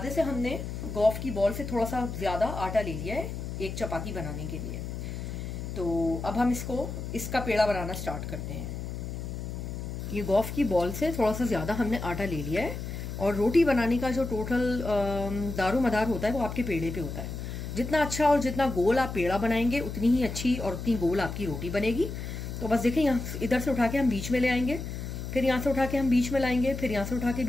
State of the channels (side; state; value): left; noise; hum, 6 dB below the sound